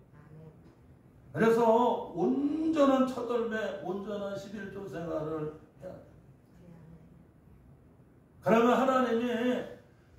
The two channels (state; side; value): identical; both; correlation 1.00